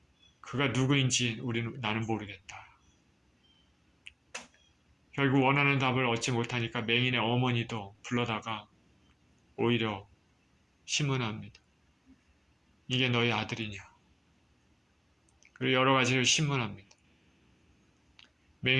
그가 누구인지 나는 모르겠다. 결국 원하는 답을 얻지 못하니까 맹인의 어머니도 불러다가 오히려 신문합니다. 이게 너희 아들이냐. 그리고 여러 가지를 신문합니다.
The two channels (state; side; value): identical; both; correlation 1.00